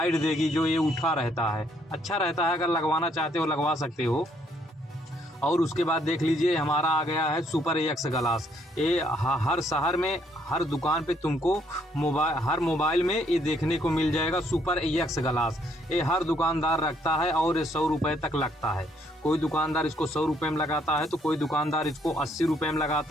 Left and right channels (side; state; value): both; normal; correlation 0.69